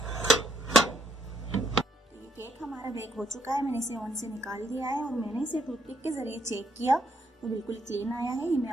ये केक हमारा बेक हो चुका है। मैंने इसे ओवन से निकाल दिया है और मैंने इसे टूथपिक के जरिए चेक किया तो बिल्कुल क्लीन आया है। ये मैं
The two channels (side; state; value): both; normal; correlation 0.72